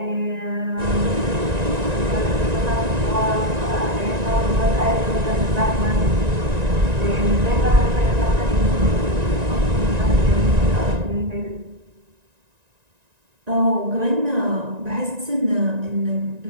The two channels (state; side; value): late; left; 1.9 ms